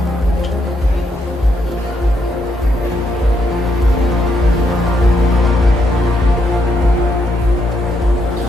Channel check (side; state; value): both; normal; correlation 0.77